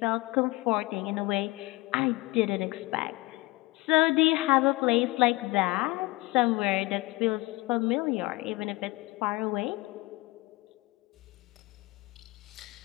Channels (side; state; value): right; quieter; 22.2 dB